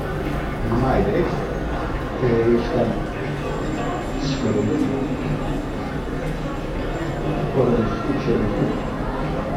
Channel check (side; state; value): both; identical; correlation 1.00